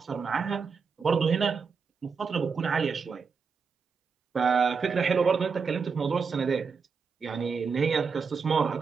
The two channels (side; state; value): left; quieter; 5.4 dB